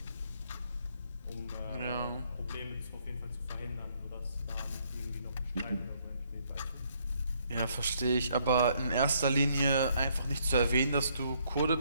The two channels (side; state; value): both; inverted; correlation -0.69